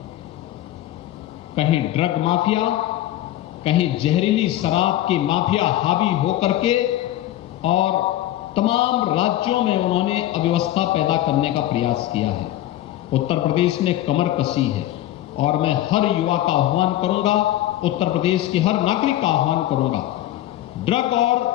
कहीं ड्रग माफिया, कहीं जहरीली शराब की माफिया हावी होकर के और तमाम राज्यों में उन्होंने अव्यवस्था पैदा करने का प्रयास किया है। उत्तर प्रदेश ने कमर कसी है और मैं हर युवा का आह्वान करूंगा, उत्तर प्रदेश के हर नागरिक का आह्वान करूंगा, ड्रग और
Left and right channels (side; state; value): right; quieter; 14.0 dB